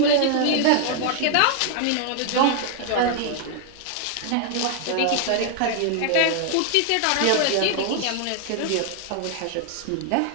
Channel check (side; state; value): both; different; correlation 0.00